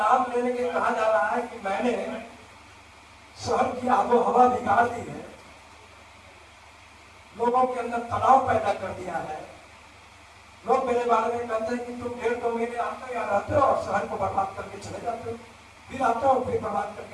लेने के कहा जा रहा है कि मैंने शहर की आबो हवा बिगाड़ दी है, लोगों के अंदर तनाव पैदा कर दिया है। लोग मेरे बारे में कहते हैं कि तुम 1.5-2 महीने आते हो, यहाँ रहते हो और शहर को बर्बाद करके चले जाते हो, फिर आते हो फिर बर्बाद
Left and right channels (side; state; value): both; identical; correlation 1.00